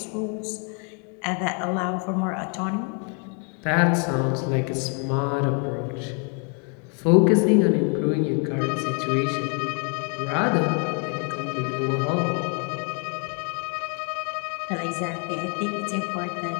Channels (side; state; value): right; quieter; 39.5 dB